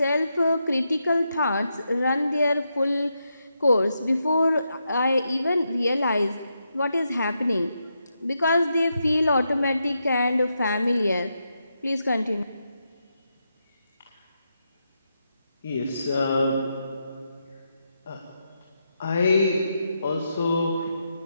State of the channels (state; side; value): inverted; both; correlation -0.84